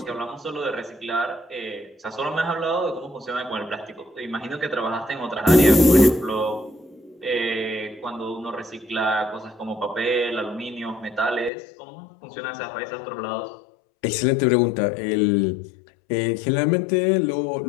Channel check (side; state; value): right; drops out; at 11.5 s